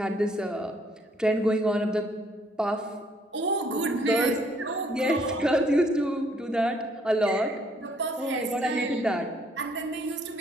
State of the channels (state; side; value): normal; both; correlation 0.65